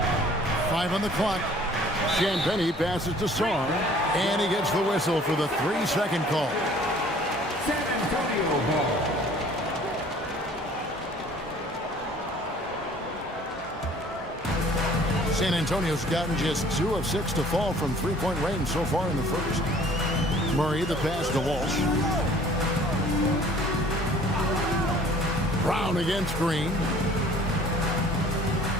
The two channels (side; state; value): both; normal; correlation 0.53